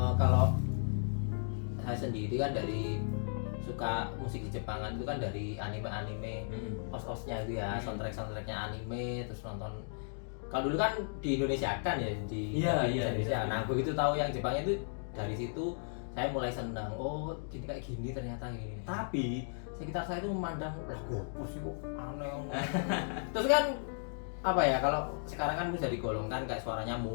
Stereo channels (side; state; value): right; silent; digital silence